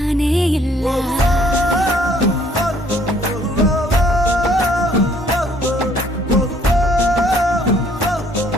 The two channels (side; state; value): both; normal; correlation 0.62